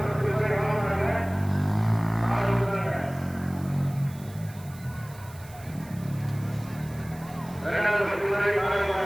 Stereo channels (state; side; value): noise; right; hiss, 21 dB below the sound